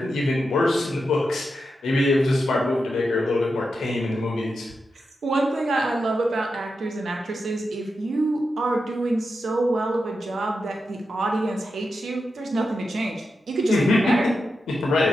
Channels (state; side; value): normal; both; correlation 0.88